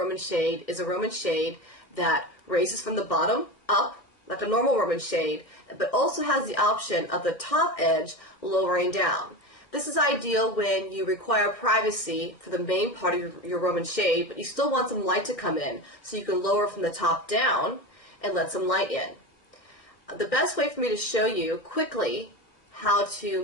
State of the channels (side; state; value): right; late; 1.6 ms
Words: shade is a Roman shade that raises from the bottom up, like a normal Roman shade, but also has the option of the top edge lowering down. This is ideal when you require privacy for the main part of your Roman shade, but you still want some light to come in, so you can lower from the top down and let some light in. The best way for me to show you quickly how